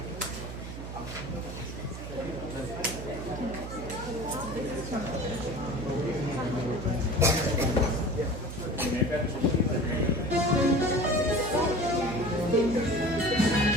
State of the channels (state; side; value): noise; right; hum, 9 dB below the sound